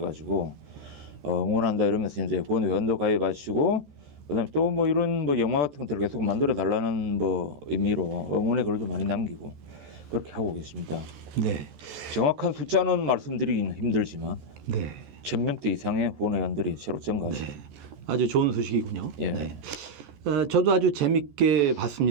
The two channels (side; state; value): left; late; 14 ms